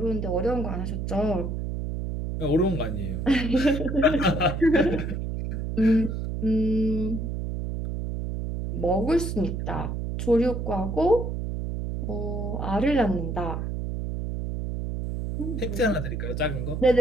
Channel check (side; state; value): right; noise; hum, 4 dB below the sound